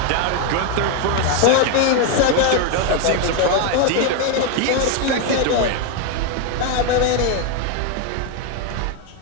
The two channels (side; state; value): both; different; correlation 0.01